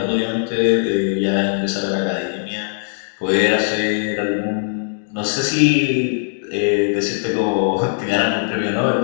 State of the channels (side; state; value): right; silent; digital silence